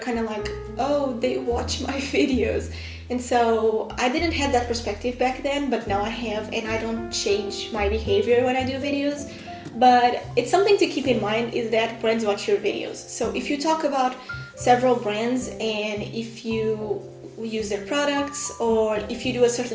of like, oh, they watch my videos. And so I didn't have that perspective back then, but now I have, and I don't change my behavior when I do videos. But it's something to keep in mind is that brands watch your videos. So if you talk about several brands and if you use their products or if you do a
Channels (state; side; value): identical; both; correlation 1.00